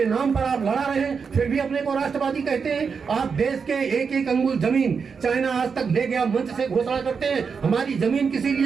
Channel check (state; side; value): quieter; left; 5.7 dB